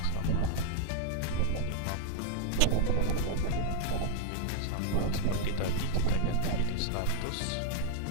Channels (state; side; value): different; both; correlation -0.01